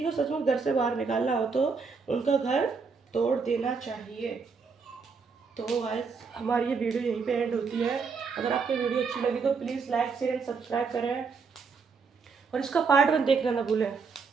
को सचमुच घर से बाहर निकालना हो तो उनका घर तोड़ देना चाहिए। तो गाइस हमारी ये वीडियो यहीं पे एंड होती है। अगर आपको वीडियो अच्छी लगी तो please like share and subscribe करें और इसका पार्ट 1 देखना ना भूलें।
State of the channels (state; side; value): quieter; left; 5.1 dB